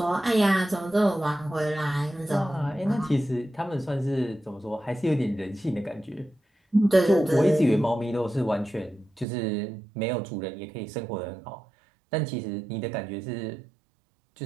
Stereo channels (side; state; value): left; drops out; at 9.2 s